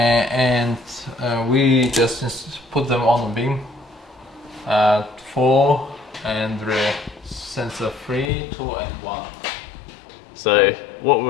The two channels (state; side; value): drops out; right; at 8.3 s